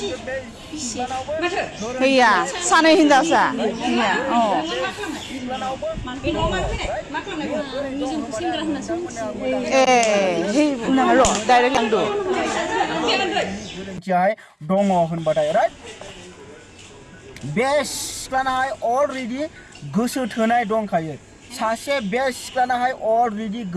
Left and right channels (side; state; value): both; identical; correlation 1.00